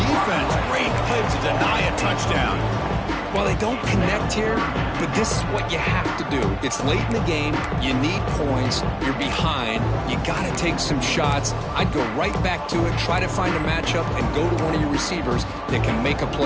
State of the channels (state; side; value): identical; both; correlation 1.00